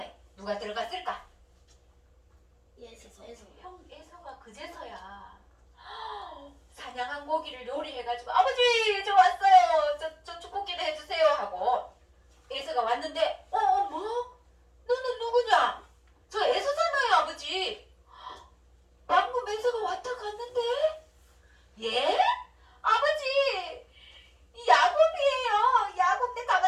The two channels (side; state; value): both; identical; correlation 1.00